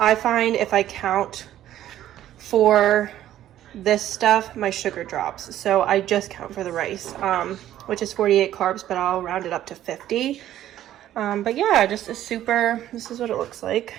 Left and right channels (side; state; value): left; quieter; 12.5 dB